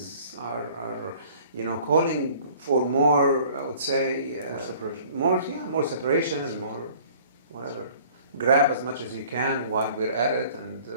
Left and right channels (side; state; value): both; inverted; correlation -0.51